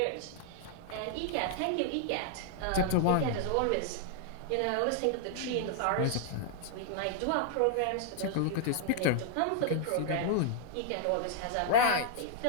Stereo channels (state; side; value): different; both; correlation 0.00